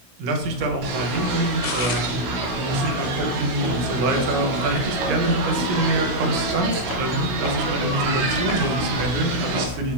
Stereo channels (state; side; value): late; left; 16 ms